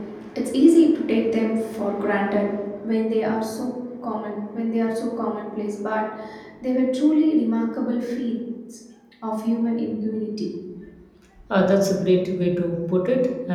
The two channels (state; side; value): identical; both; correlation 1.00